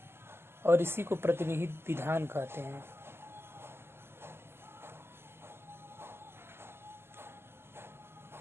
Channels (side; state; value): left; late; 0.12 ms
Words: और इसी को प्रतिनिहित विधान कहते हैं।